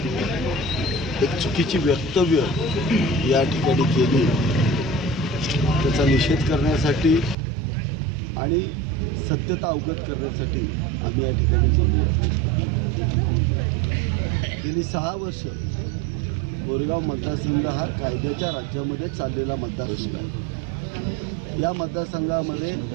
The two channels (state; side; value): drops out; left; at 7.4 s